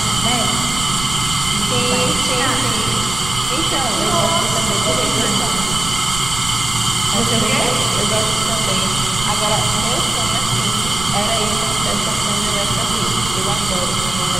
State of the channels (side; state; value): right; noise; rumble, 9 dB below the sound